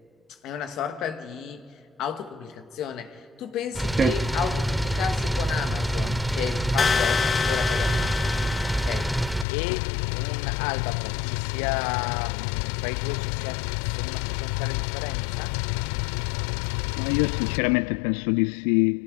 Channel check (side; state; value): right; drops out; at 9.5 s